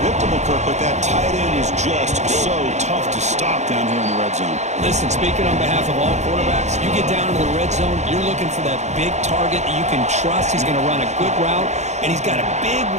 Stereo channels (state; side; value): late; left; 0.33 ms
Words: Kirk, but that tight end is just so tough to stop down here in the red zone. Listen, speaking on behalf of all quarterbacks, you get down to the red zone, you're looking for that big target that you can trust. He's going to run a good route, and he's got a big